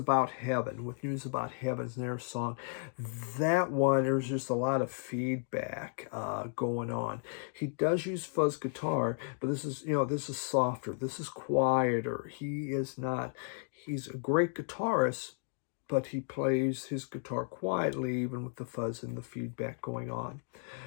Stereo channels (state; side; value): silent; right; 55 dB below the other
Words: Heaven. With News About Heaven's their song. That one, there's just a lot of feedback going on. He does use fuzz guitar, but this is softer. This is quieter. He's a great guitarist, but he plays his guitar quietly, even with the fuzz and the feedback going on.